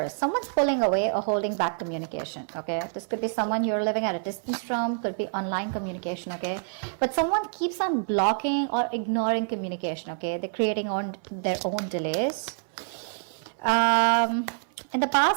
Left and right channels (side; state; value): left; silent; 60 dB below the other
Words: Someone's pulling away or holding back communication, okay? This could be someone you're living at a distance from, could be online communication, okay? But someone keeps on blocking or ignoring communication, okay? They're creating their own delays. In the